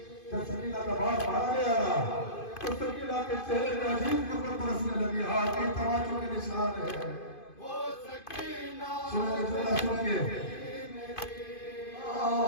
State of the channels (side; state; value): right; late; 2.5 ms